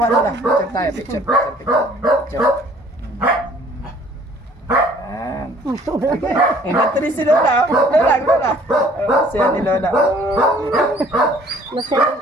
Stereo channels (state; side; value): normal; both; correlation 0.56